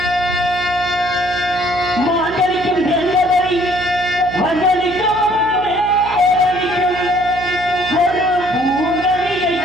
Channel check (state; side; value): noise; right; hum, 14 dB below the sound